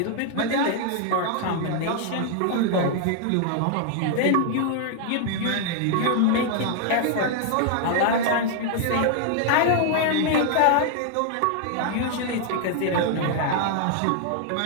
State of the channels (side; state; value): both; different; correlation 0.00